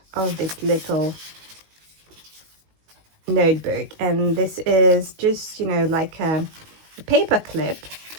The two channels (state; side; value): late; left; 19 ms